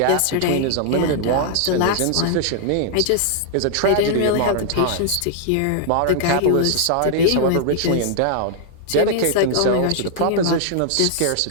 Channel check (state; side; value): different; both; correlation 0.00